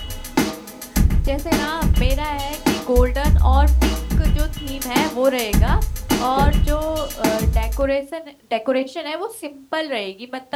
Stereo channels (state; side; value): identical; both; correlation 1.00